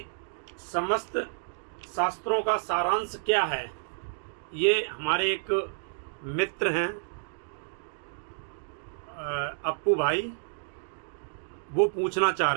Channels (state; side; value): silent; left; digital silence